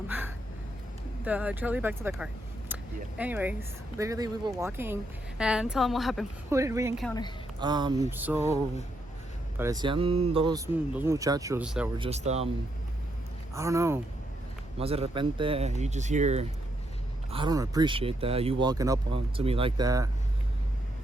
the trolley back to the car. Yeah. Anyways, literally we were walking, and tell them what happened. Who did we encounter? So parecían dos muchachos that were just I don't know, más de repente you just hear, I don't appreciate that, you walking up to me like that.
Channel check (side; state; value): both; normal; correlation 0.78